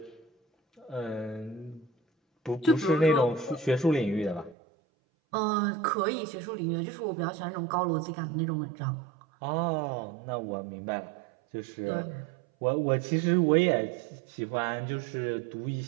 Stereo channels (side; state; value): left; drops out; at 4.5 s